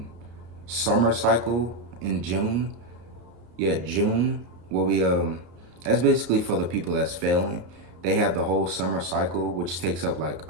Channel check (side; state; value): left; late; 33 ms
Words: summer cycle in June. Yeah, June, where we that's basically for the people that's failing. They have the whole summer cycle, which takes up like